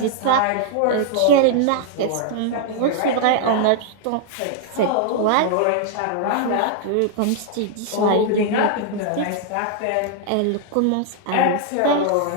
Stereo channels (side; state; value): both; different; correlation -0.01